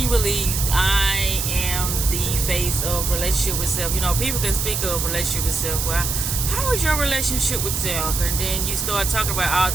am the face of relationship with self. People can speak of relationship with self. Well, how is your relationship with self? And then you start talking about all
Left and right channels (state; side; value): noise; right; hiss, 2 dB below the sound